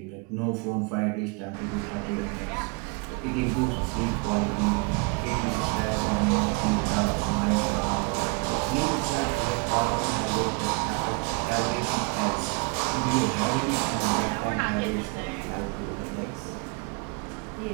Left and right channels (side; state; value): left; quieter; 30.6 dB